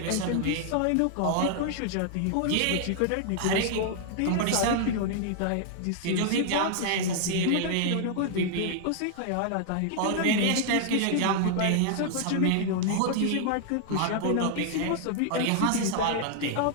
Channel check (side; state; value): both; different; correlation -0.01